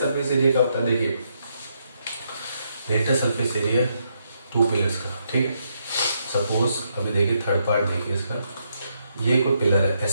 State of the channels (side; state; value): both; inverted; correlation -0.77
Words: एरिया क्या होता है? देखिए लेटर सरफेस एरिया 2 पिलर्स का, ठीक है। सपोज अभी देखिए थर्ड पार्ट देखिए इसका, ये कोई पिलर है,